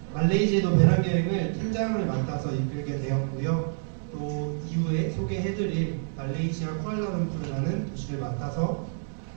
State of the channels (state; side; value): silent; left; 59 dB below the other